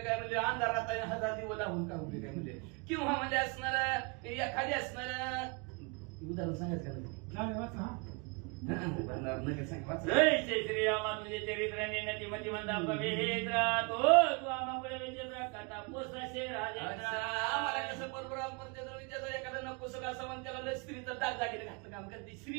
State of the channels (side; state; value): left; quieter; 31.7 dB